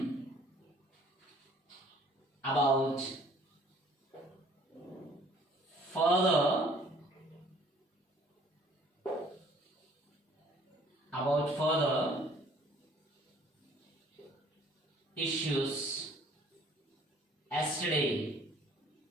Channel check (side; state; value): both; normal; correlation 0.56